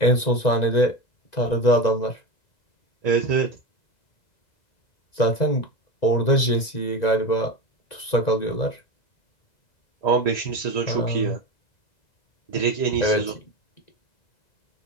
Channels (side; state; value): right; late; 1.9 ms